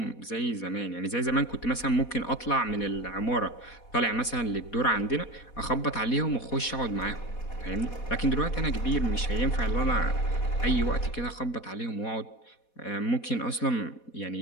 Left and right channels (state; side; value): late; right; 4.2 ms